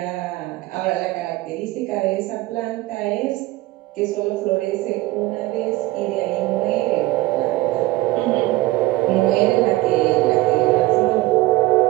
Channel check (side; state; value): left; quieter; 18.3 dB